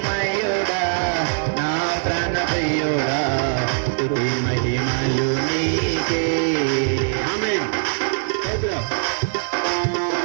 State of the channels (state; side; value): silent; left; 57 dB below the other